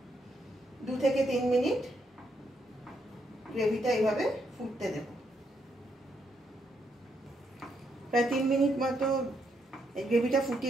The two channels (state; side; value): normal; both; correlation 0.77